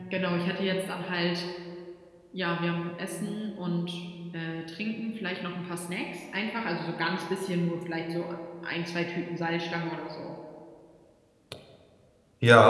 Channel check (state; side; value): identical; both; correlation 1.00